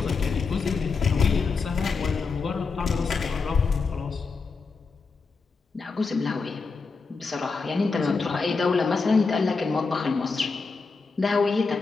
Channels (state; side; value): quieter; right; 4.6 dB